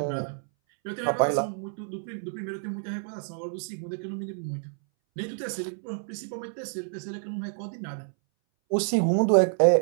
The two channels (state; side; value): silent; left; 59 dB below the other